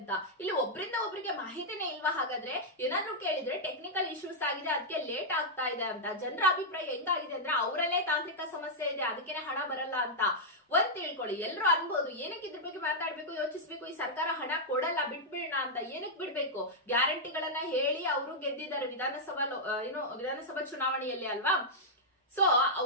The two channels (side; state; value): both; normal; correlation -0.06